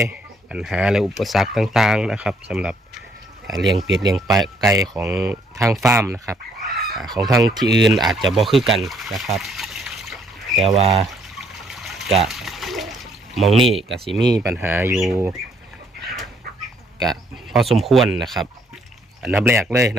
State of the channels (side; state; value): both; normal; correlation 0.67